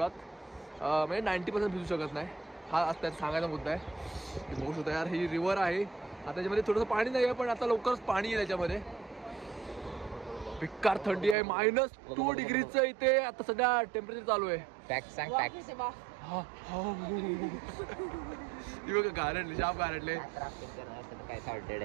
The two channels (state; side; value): drops out; left; at 11.4 s